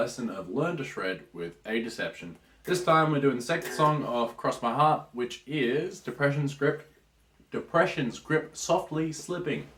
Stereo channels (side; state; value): both; identical; correlation 1.00